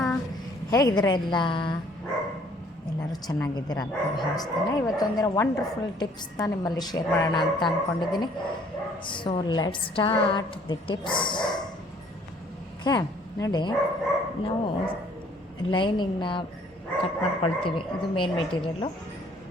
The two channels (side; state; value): both; normal; correlation 0.59